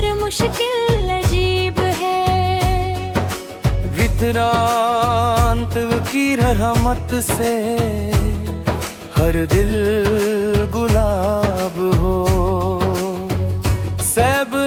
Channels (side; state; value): both; identical; correlation 1.00